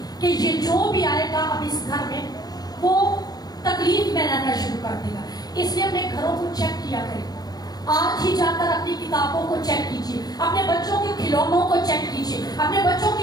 کہ یہ جو بھی آئے گا اب اس گھر میں وہ تکلیف میں رہنا شروع کر دے گا. اس لیے اپنے گھروں کو چیک کیا کریں. آج ہی جا کر اپنی کتابوں کو چیک کیجیے, اپنے بچوں کے کھلونوں کو چیک کیجیے, اپنے بچوں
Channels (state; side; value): late; right; 0.19 ms